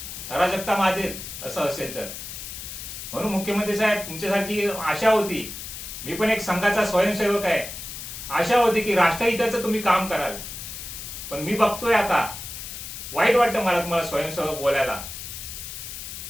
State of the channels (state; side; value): noise; left; hiss, 9 dB below the sound